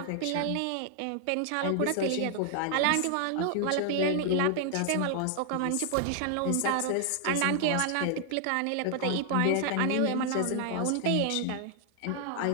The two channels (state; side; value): different; both; correlation 0.00